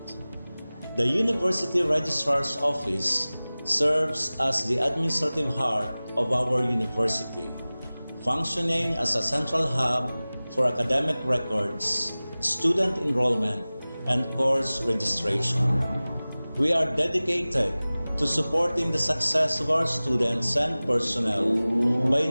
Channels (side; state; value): both; inverted; correlation -0.98